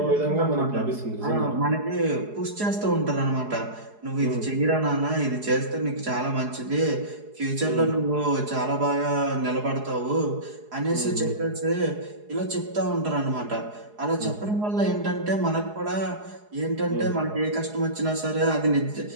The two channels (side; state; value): left; late; 4.8 ms